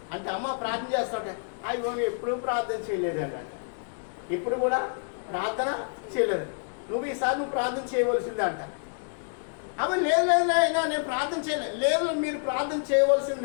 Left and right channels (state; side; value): silent; right; digital silence